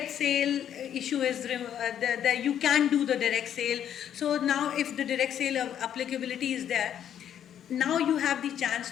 sale issue is you can do the direct sale. So now if the direct sale applicability is there, now you have the chance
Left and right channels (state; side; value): quieter; right; 9.7 dB